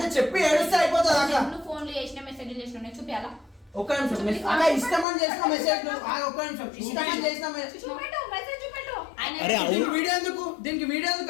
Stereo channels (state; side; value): drops out; right; at 5.1 s